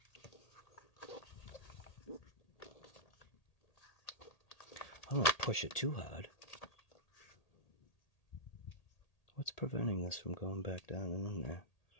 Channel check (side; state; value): right; late; 1.8 ms